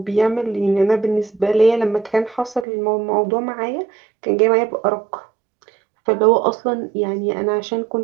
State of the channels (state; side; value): drops out; left; at 2.7 s